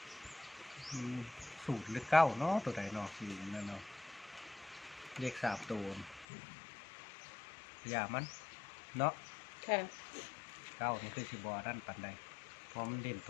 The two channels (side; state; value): right; drops out; at 6.2 s